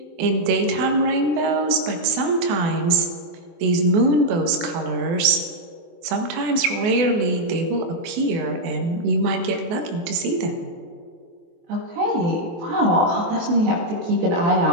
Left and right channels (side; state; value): left; late; 24 ms